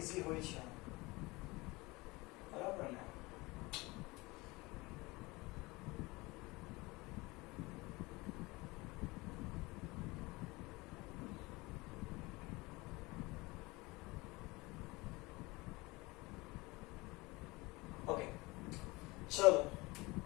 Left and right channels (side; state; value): right; quieter; 23.1 dB